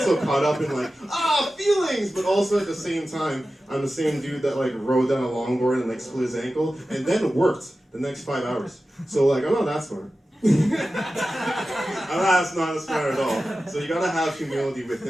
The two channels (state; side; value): normal; both; correlation 0.94